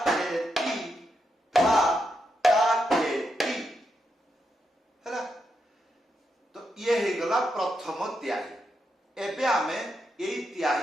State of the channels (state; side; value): normal; both; correlation 0.83